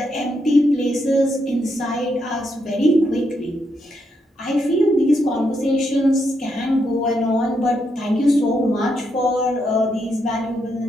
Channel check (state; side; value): normal; both; correlation 0.79